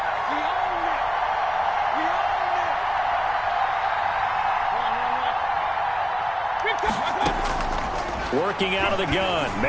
Working out of the gun,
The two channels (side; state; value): both; identical; correlation 1.00